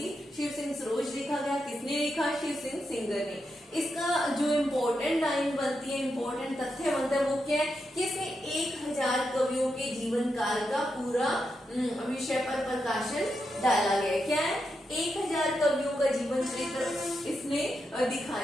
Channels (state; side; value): normal; both; correlation 0.85